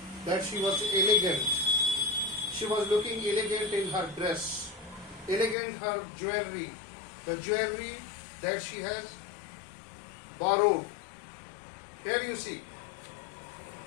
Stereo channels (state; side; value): drops out; right; at 5.6 s